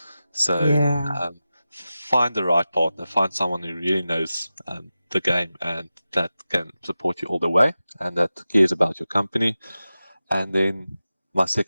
So find the right partner, find someone who really knows the game and that can support you all the way and that cares about your company. And then my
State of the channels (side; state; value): both; inverted; correlation -0.94